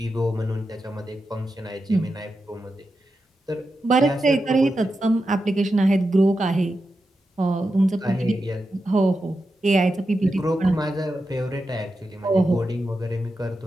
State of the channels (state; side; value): normal; both; correlation 0.89